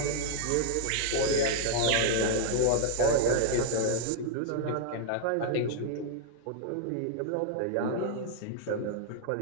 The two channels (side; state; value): both; different; correlation 0.00